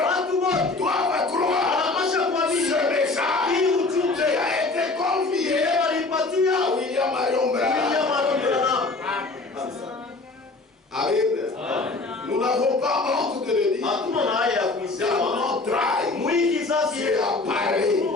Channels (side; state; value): right; quieter; 3.5 dB